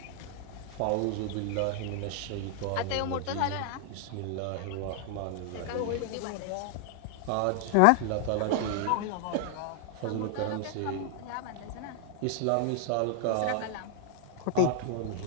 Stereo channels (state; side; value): different; both; correlation 0.00